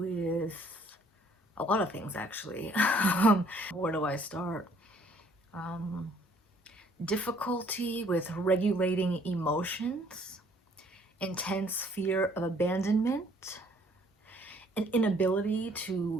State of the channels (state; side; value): normal; both; correlation 0.61